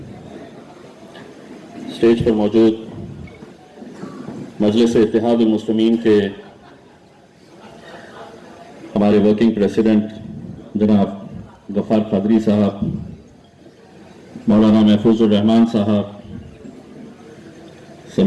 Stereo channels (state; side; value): identical; both; correlation 1.00